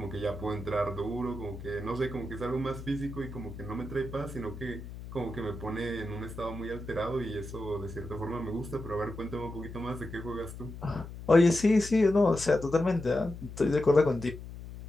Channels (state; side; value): noise; left; hum, 11 dB below the sound